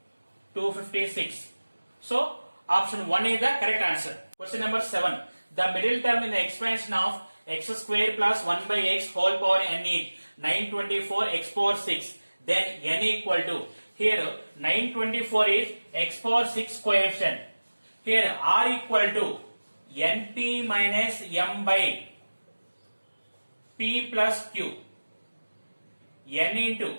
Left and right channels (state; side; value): inverted; both; correlation -1.00